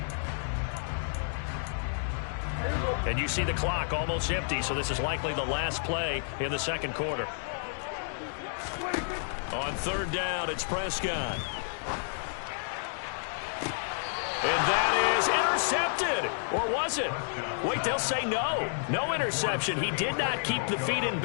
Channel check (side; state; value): right; silent; digital silence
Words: And you see the clock almost empty, so this is likely the last play in the second quarter. On 3rd down, it's Prescott. And that is intercepted. Or was it? Wait, they'll say no. No interception. He did not keep the feet in